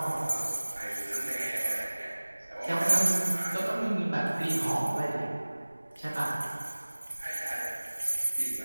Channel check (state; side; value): inverted; both; correlation -1.00